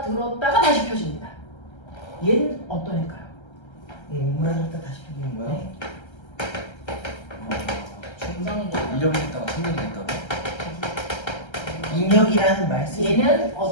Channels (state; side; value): late; right; 1.3 ms